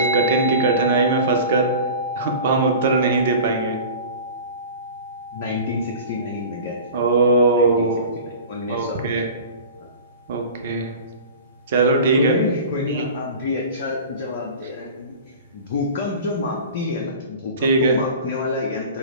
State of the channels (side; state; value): both; inverted; correlation -0.37